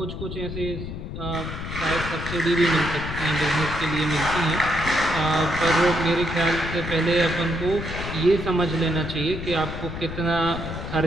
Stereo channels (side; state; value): left; noise; rumble, 7 dB below the sound